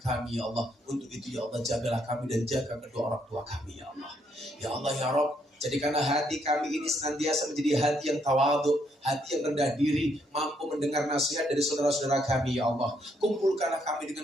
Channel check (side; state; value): both; normal; correlation 0.73